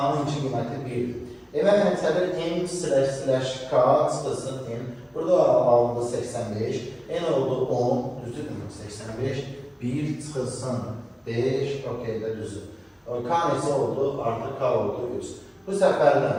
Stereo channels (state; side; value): identical; both; correlation 1.00